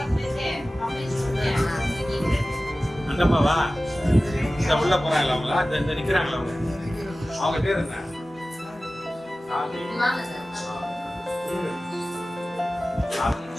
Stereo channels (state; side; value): normal; both; correlation 0.96